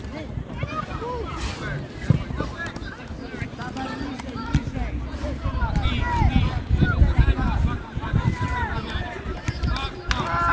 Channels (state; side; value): identical; both; correlation 1.00